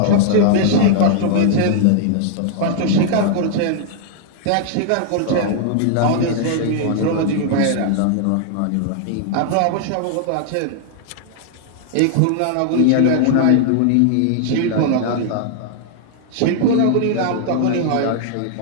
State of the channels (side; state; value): both; different; correlation -0.01